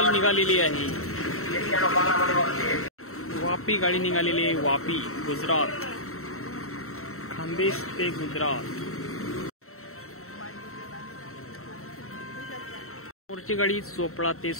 निघालेली आहे। वापी गाडी निघालेली आहे, वापी गुजरात खानदेश ते गुजरात। मोरची गाडी चोपडा ते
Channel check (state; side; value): late; right; 0.63 ms